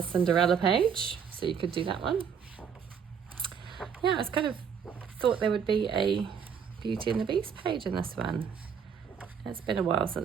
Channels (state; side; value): quieter; left; 7.2 dB